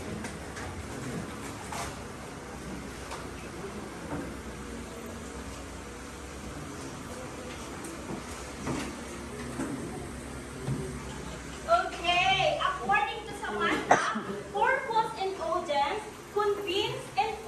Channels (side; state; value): both; identical; correlation 1.00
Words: Okay, according to Samantha, purpose and audience, convince,